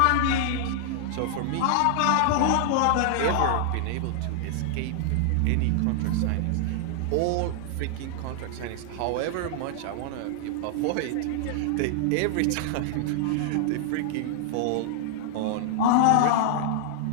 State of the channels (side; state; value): both; different; correlation -0.01